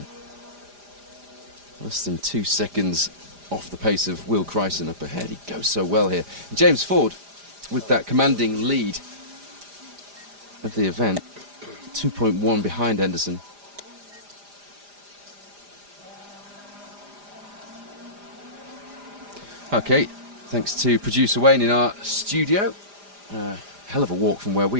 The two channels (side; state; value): left; late; 4.9 ms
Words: less than 2 seconds off the pace of Will Chryson up ahead. He goes so well here. And James Ford, with that commanding lead of the event, 2.1 behind Henderson. Okay, thanks to producer Wayne in our studio. Hell of a walk from where